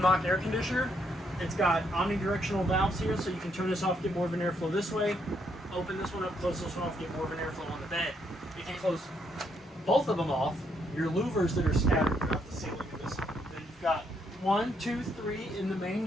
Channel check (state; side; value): normal; both; correlation 0.74